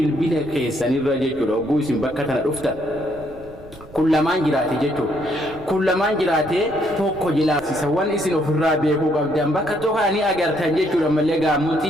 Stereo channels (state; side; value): noise; right; rumble, 21 dB below the sound